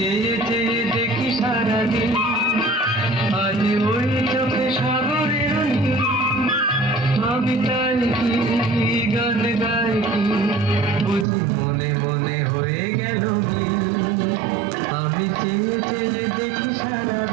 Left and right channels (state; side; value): drops out; left; at 11.2 s